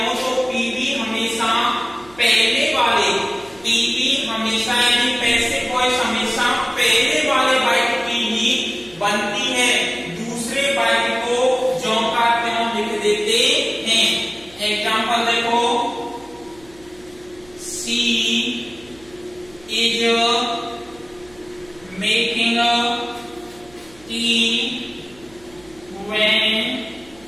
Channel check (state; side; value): noise; right; hum, 25 dB below the sound